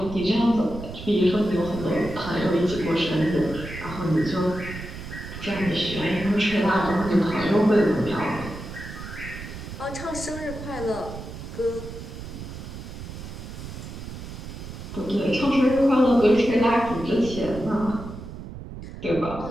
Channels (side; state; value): right; noise; rumble, 10 dB below the sound